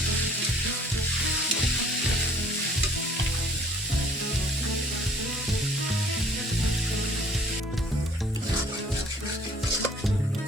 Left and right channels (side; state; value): both; normal; correlation 0.55